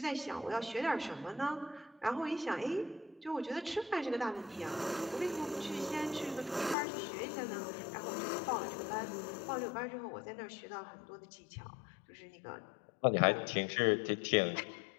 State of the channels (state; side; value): drops out; right; at 6.8 s